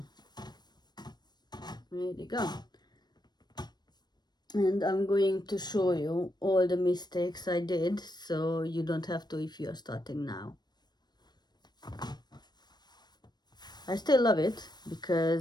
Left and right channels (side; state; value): right; late; 0.20 ms